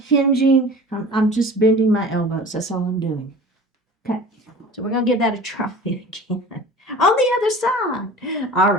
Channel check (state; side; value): normal; both; correlation 0.40